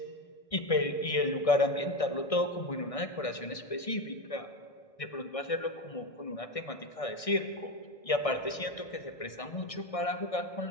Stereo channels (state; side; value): late; right; 1.6 ms